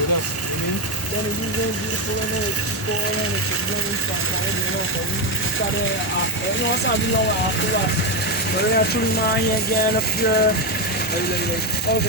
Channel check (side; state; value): both; normal; correlation 0.08